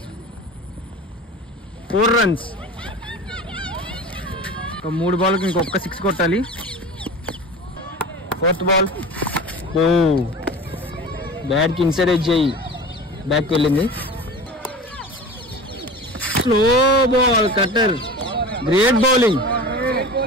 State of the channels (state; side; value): normal; both; correlation 0.35